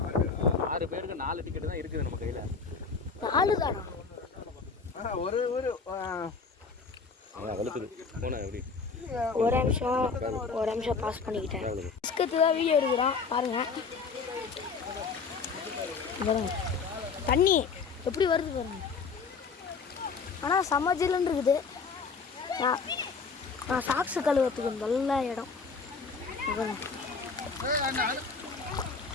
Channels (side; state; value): right; quieter; 5.0 dB